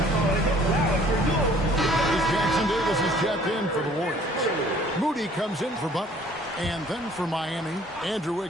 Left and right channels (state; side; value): normal; both; correlation 0.56